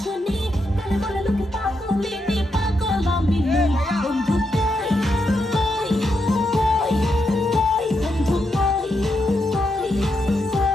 বলে বলে লোকে পাগলিনী পাগল আমি নই বন্ধু কই কই কই কই বন্ধু কই কই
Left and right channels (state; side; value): normal; both; correlation 0.82